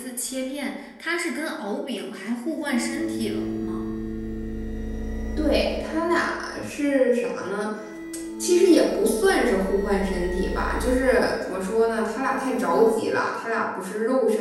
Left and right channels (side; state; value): both; identical; correlation 1.00